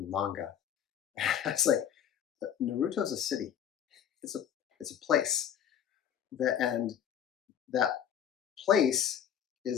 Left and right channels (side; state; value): right; quieter; 9.2 dB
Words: manga. It's like, Naruto's a city. It's a place. And that place